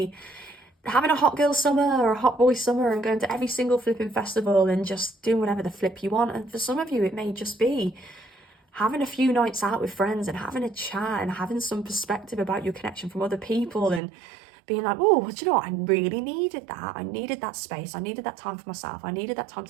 having a hot girl summer or a hot boy summer and going to every single flipping festival and just doing whatever the flip you want. And for some of you, it may just be having a few nights out with friends and having a chat and having some perspective about your connection from other people and being like, oh, do you know what? I really needed that. I needed that space. I needed that time for myself. I needed that time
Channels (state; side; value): drops out; left; at 14.0 s